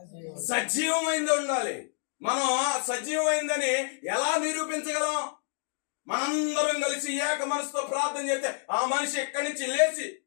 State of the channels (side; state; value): right; silent; digital silence